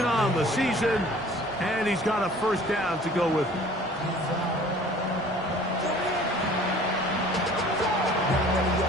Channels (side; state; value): both; normal; correlation 0.50